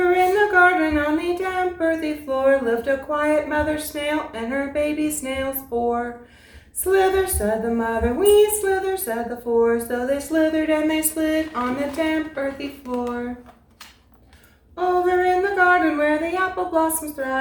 in the garden on the damp earthy floor lived a quiet mother snail and her baby snails four. Slither, said the mother, we slither, said the four. So they slithered and they slid on the damp earthy floor. Over in the garden where the apple blossoms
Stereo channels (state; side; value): identical; both; correlation 1.00